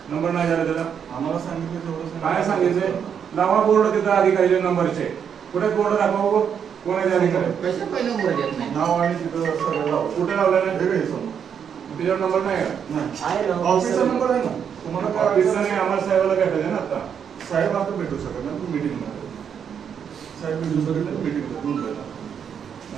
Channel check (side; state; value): left; quieter; 7.7 dB